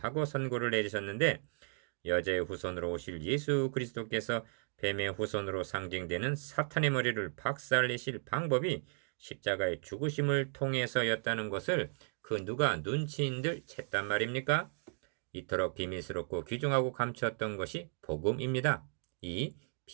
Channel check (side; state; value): left; silent; 54 dB below the other